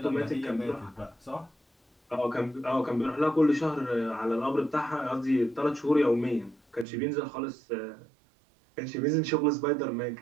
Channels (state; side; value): drops out; left; at 6.9 s